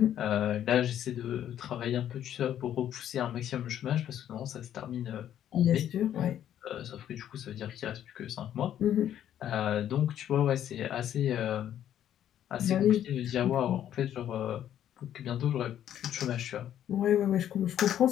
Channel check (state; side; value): quieter; right; 10.8 dB